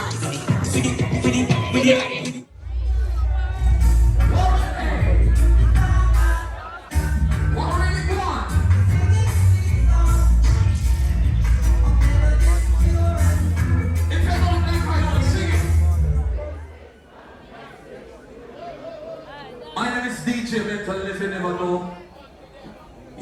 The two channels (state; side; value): identical; both; correlation 1.00